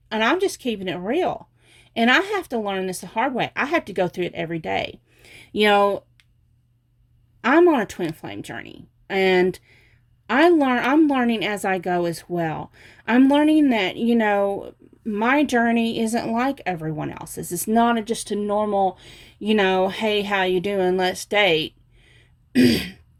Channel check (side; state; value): both; identical; correlation 1.00